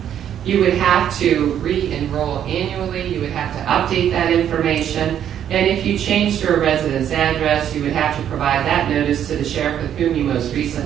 You would have to re-enroll annually. You would have to update that information. And if you changed your residence address, you would have to provide that notice to the sheriff with whom you most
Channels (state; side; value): quieter; left; 9.9 dB